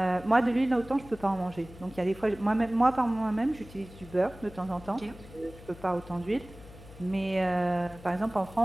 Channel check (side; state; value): left; noise; hum, 18 dB below the sound